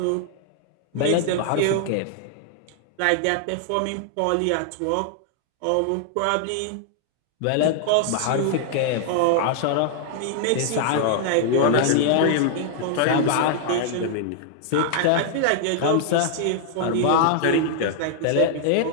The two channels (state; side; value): different; both; correlation 0.00